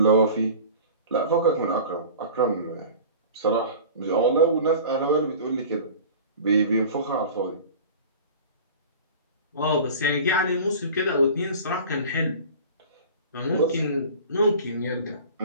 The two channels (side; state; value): both; inverted; correlation -0.39